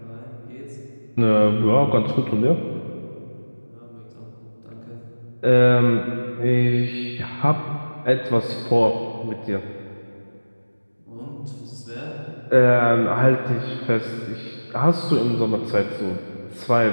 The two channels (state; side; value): inverted; both; correlation -1.00